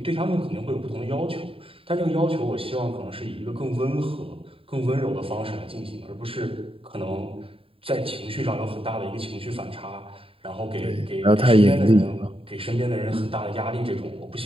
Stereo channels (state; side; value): late; left; 0.27 ms